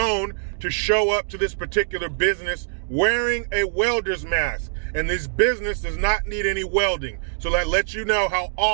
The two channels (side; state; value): left; silent; digital silence